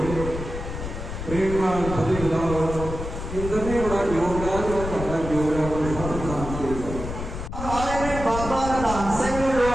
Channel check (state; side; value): noise; left; rumble, 7 dB below the sound